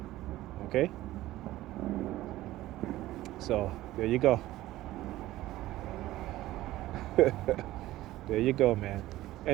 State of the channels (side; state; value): left; quieter; 15.9 dB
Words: Okay? So, there you go. There you go, man.